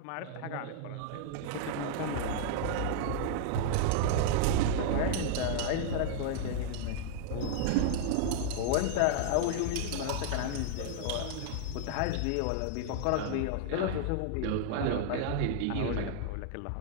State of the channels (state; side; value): different; both; correlation -0.01